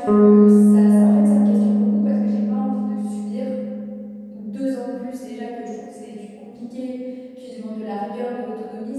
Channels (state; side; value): identical; both; correlation 1.00